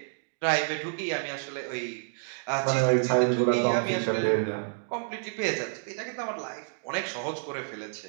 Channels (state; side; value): silent; left; digital silence